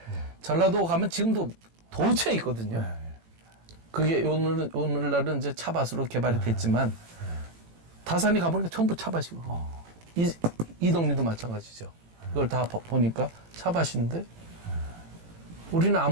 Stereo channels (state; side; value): late; left; 18 ms